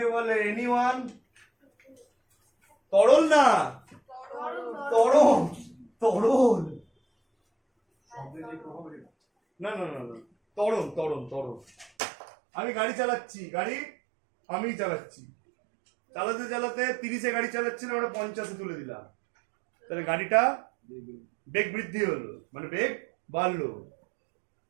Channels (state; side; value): drops out; left; at 11.9 s